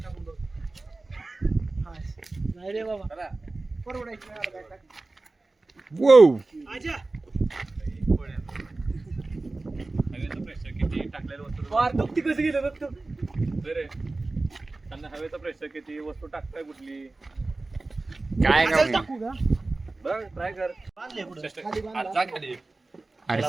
नाही रे बाबा परवडायची नाही बॅग टाक. वो हवेचं प्रेशर किती टाकलेलं वस्तू वार दुखती कसं गेलं बघ तू. रे त्यांना हवेचं प्रेशर किती वस्तू टाकताय कुठली काय असंच का टाकू का बघ ट्राय कर खाली आज बांधा. जा खाली अरे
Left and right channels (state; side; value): quieter; left; 3.2 dB